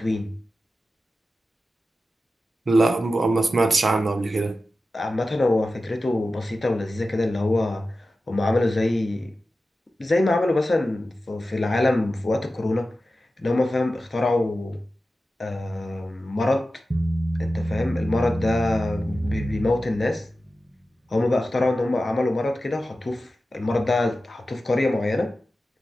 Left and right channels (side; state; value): both; normal; correlation 0.93